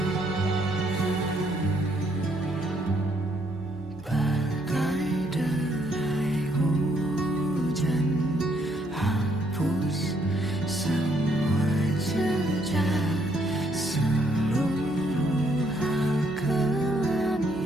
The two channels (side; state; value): left; noise; hum, 21 dB below the sound